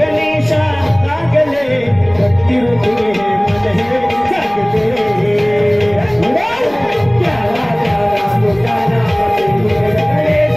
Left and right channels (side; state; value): left; noise; rumble, 23 dB below the sound